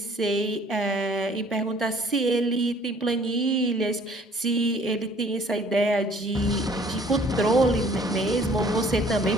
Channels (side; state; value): both; normal; correlation 0.56